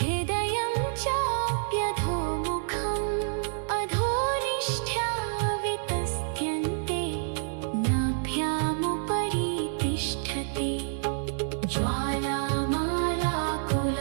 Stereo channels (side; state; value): left; silent; digital silence